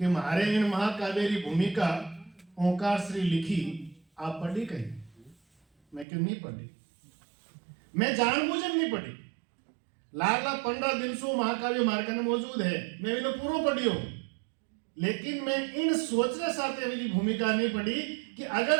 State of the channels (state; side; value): drops out; left; at 6.1 s